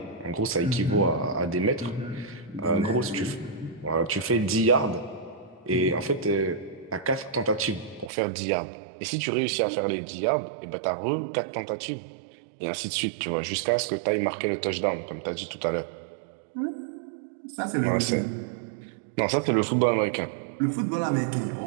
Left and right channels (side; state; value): left; drops out; at 8.1 s